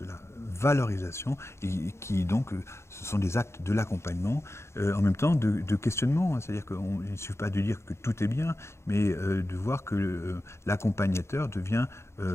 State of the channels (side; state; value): right; late; 0.13 ms